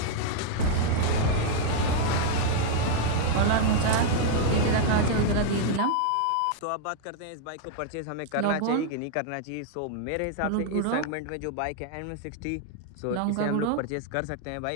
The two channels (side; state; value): both; different; correlation -0.01